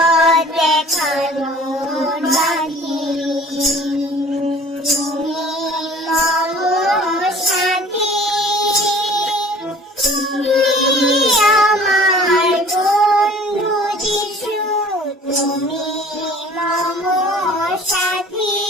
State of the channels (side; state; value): both; normal; correlation 0.48